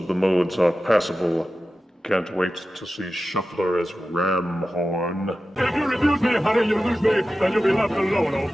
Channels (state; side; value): normal; both; correlation 0.93